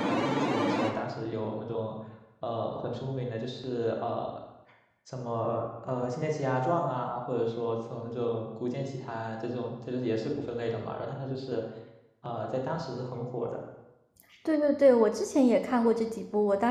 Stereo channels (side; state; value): both; identical; correlation 1.00